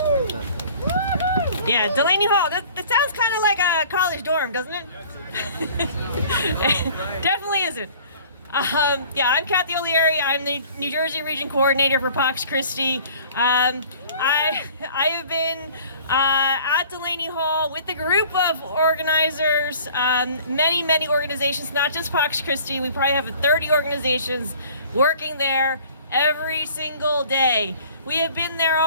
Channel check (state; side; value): inverted; both; correlation -0.50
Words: Yeah, Delaney Hall. That sounds kind of like a college dorm, doesn't it? Definitely isn't. Yeah, I'm Kathy O'Leary. I'm the New Jersey Region Coordinator for Pax Christi. I have been at Delaney Hall with a group of organizers, many organizations, not just Pax Christi. We probably have 30 organizations working there every single day. We have been there